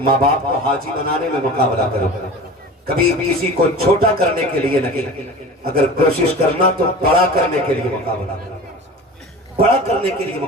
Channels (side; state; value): both; normal; correlation 0.36